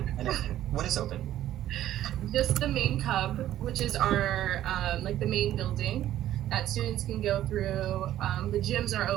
I know. What is open? Just the main cub, which is our, the main building that students can go through. The gyms are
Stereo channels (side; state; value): left; quieter; 12.7 dB